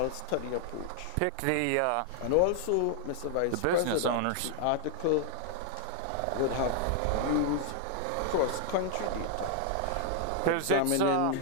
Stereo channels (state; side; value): different; both; correlation 0.00